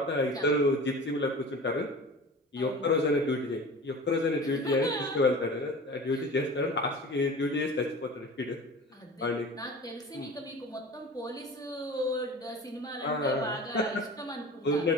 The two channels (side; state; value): both; normal; correlation 0.37